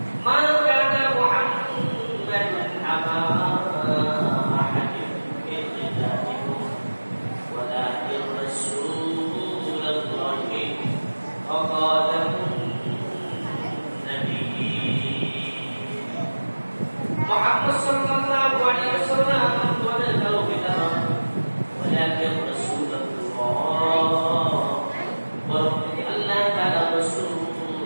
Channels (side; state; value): both; inverted; correlation -1.00